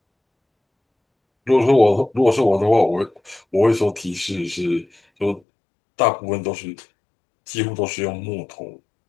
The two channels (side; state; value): right; drops out; at 5.4 s